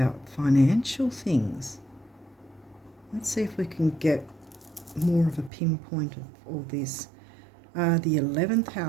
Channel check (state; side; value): drops out; left; at 5.5 s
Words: financial things. Let's see if we can get more of a pinpoint of all this. The 11th